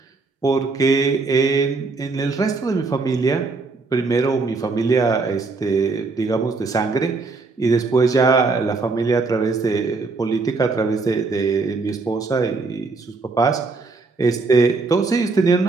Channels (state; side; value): quieter; left; 3.9 dB